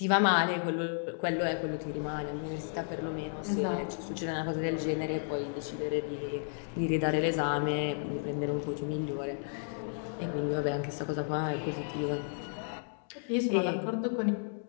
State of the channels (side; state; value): right; silent; digital silence